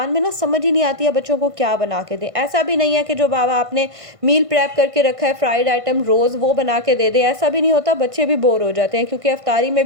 में ना समझ ही नहीं आती है बच्चों को क्या बना के दें। ऐसा भी नहीं है कि जो बाबा आपने मील प्रेप करके रखा है फ्राइड आइटम रोज़ वो बना के दे दें, ऐसा भी नहीं होता। बच्चे भी बोर हो जाते हैं क्योंकि अफ्तारी में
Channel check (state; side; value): late; left; 1.5 ms